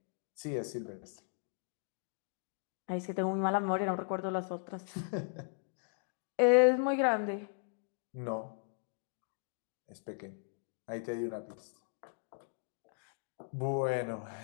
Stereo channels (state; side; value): silent; right; digital silence